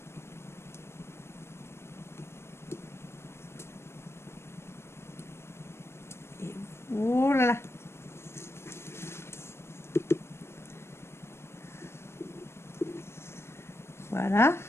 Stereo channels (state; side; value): late; right; 0.12 ms